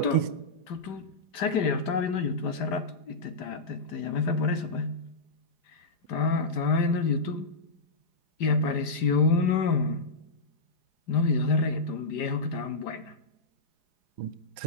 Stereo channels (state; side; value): late; right; 5.0 ms